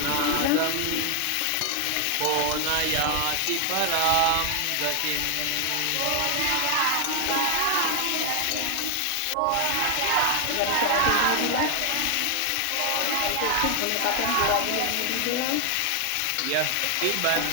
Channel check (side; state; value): both; different; correlation 0.00